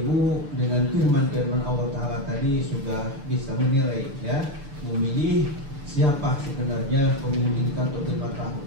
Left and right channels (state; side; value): late; left; 6.9 ms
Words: dengan firman-firman Allah Ta'ala tadi sudah bisa menilai, ya, memilih siapa sebenarnya pemimpin untuk 5 tahun.